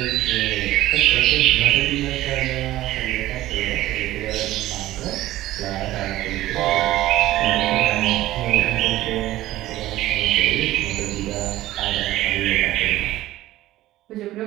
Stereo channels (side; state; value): left; quieter; 15.5 dB